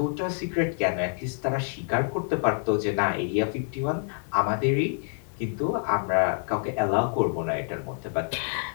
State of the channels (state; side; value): silent; right; 56 dB below the other